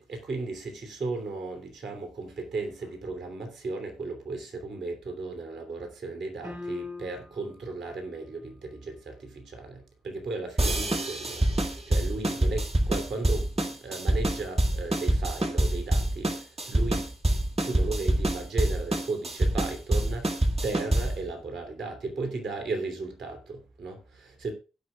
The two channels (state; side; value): normal; both; correlation 0.90